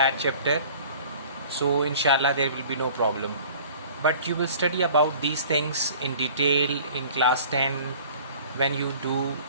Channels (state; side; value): inverted; both; correlation -0.47